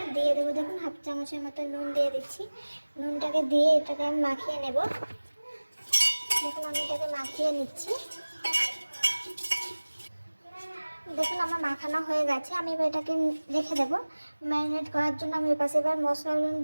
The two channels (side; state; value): both; inverted; correlation -1.00